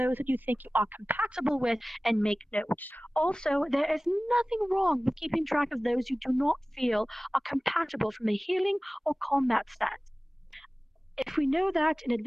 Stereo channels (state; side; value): normal; both; correlation 0.98